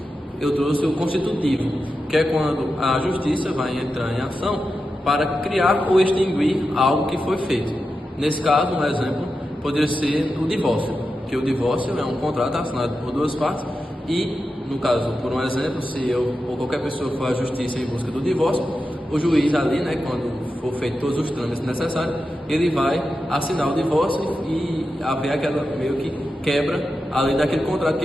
eu trouxe o constitutivo, que é quando a justiça vai entrar em ação para criar ou extinguir algo que foi feito. Nesse caso, um exemplo poderia ser o divórcio, que o divórcio é um contrato assinado por duas partes e, no caso, por um exemplo, se eu ou qualquer pessoa for à justiça em busca do divórcio, o juiz ali, né, quando for feito todos os trâmites necessários, ele vai assinar o divórcio e haver aquela meio que quebra ali daquele contrato que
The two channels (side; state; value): both; normal; correlation 0.90